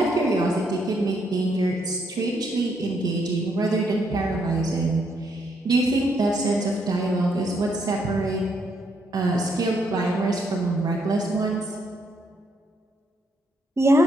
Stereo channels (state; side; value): normal; both; correlation 0.74